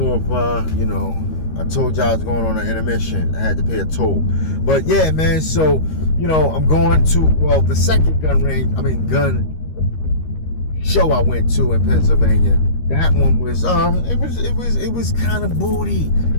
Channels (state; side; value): late; right; 13 ms